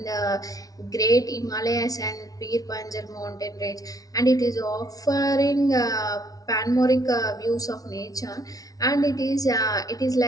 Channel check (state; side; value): late; right; 0.18 ms